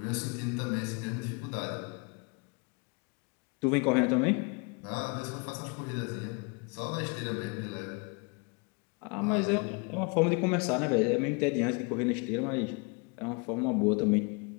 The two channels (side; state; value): right; quieter; 31.8 dB